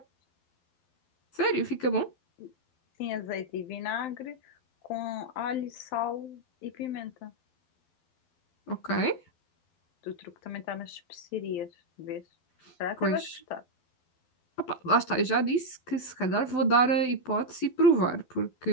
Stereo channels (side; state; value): right; late; 12 ms